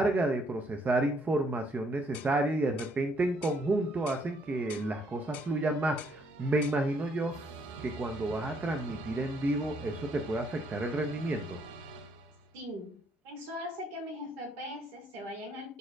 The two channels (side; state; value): both; normal; correlation 0.69